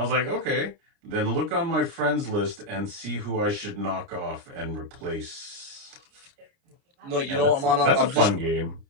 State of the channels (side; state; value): left; late; 29 ms